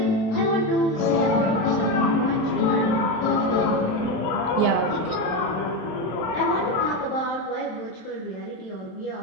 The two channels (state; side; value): late; right; 27 ms